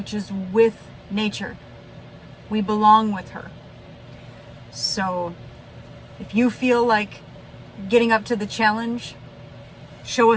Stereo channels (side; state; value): both; identical; correlation 1.00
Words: is with nature. We belong with her. So if you feel like getting up to the challenge, show